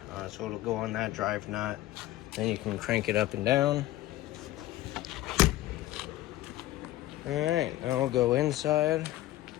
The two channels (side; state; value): right; quieter; 15.8 dB